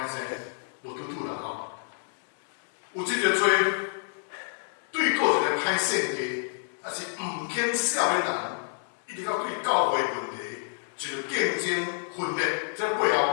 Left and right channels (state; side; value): silent; right; digital silence